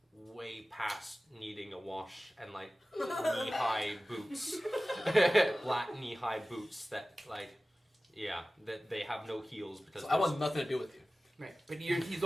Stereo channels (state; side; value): normal; both; correlation 0.97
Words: way past needing a wash, and like knee-high boots, black knee-high boots that like, yeah, that they have no heels because So I want nothing to do with you. Right, but he's